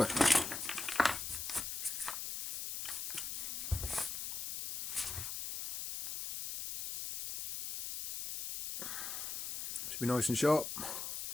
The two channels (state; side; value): noise; left; hiss, 3 dB below the sound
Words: Should be nice and sharp.